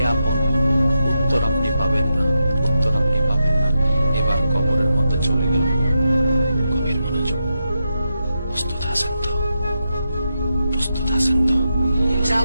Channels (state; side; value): inverted; both; correlation -0.87